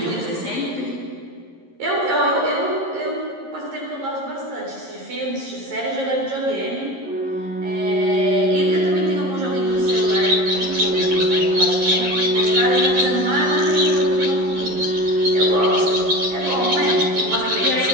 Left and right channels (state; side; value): late; left; 11 ms